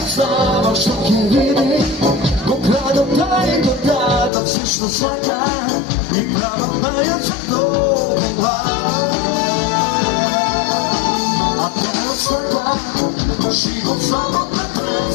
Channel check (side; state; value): right; drops out; at 4.3 s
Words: знава што ќе види. Го градот дај го дадат се што сваќа и прават мајот за тоа. А тоа сваќа живот само да